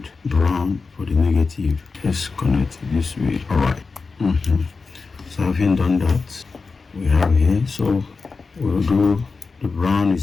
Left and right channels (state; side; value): quieter; right; 4.4 dB